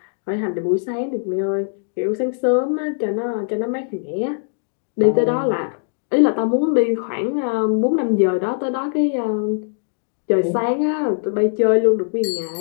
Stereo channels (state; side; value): silent; right; digital silence